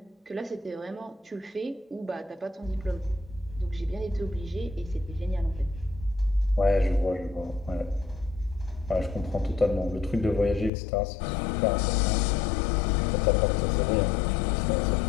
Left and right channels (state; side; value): drops out; right; at 10.7 s